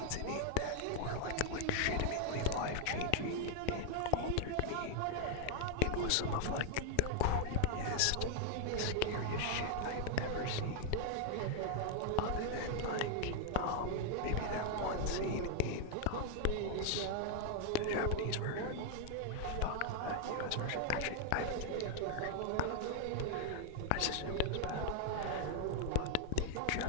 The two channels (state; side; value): different; both; correlation -0.01